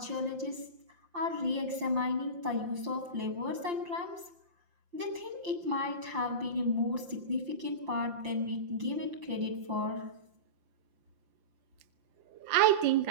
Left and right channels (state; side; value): late; left; 5.8 ms